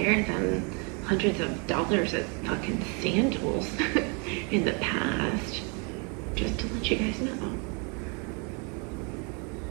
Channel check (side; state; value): left; quieter; 34.8 dB